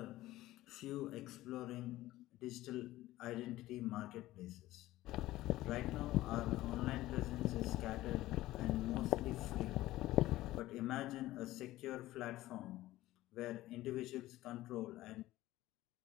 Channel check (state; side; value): quieter; right; 16.3 dB